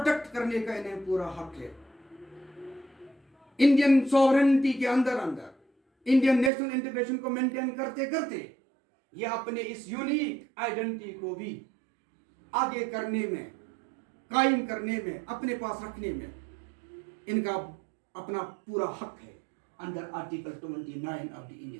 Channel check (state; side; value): drops out; left; at 6.5 s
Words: کرنے کا انہیں پورا حق ہے. انڈین سوورنٹی کے اندر انڈین نیشنل انٹیگریشن کو مینٹین کرتے کرتے یہ اپنے اس یونیک آئیڈینٹی کو بھی آگے کرنے میں, قائم کرنے میں, اپنے پاس رکھنے میں ان کا اپنا پورا حق ہے under article 29 of the